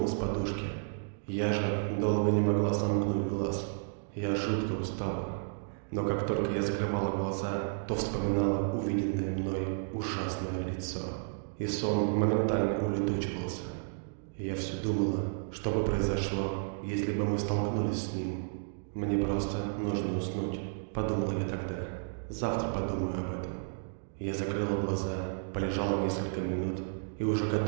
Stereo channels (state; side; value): silent; left; digital silence